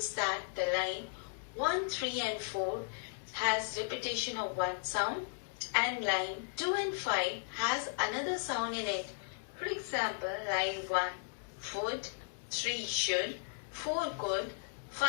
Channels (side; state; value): right; silent; digital silence